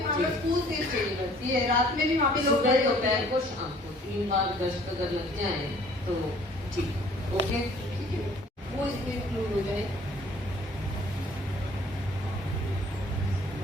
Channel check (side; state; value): both; normal; correlation 0.55